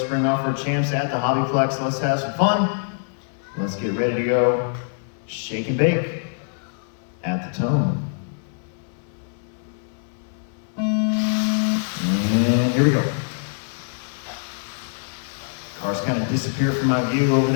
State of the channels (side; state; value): right; silent; 63 dB below the other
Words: off-road champs at the HobbyPlex. Let's have some fun. Let's get ready to go shake and bake at the Tone. And here we go. Cars kind of disappear from my view over